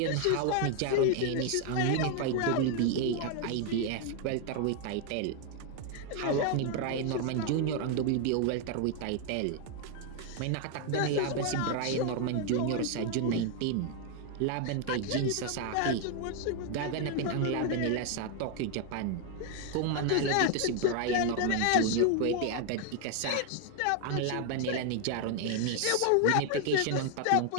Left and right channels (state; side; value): different; both; correlation 0.00